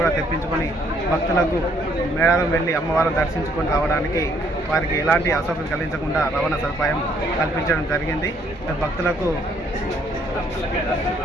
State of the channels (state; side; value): normal; both; correlation 0.67